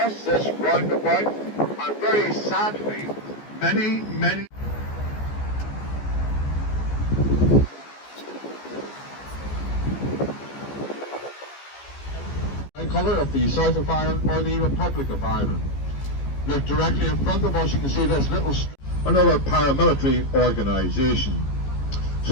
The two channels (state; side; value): late; right; 14 ms